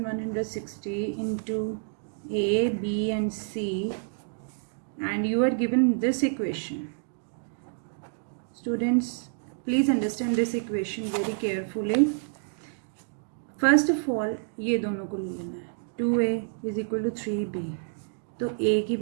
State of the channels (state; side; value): silent; left; digital silence